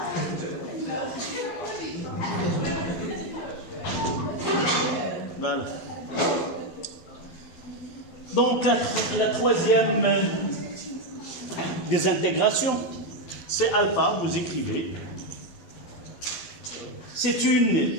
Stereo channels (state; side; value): late; right; 12 ms